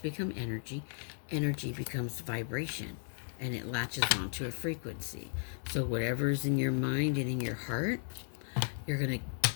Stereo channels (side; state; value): right; silent; digital silence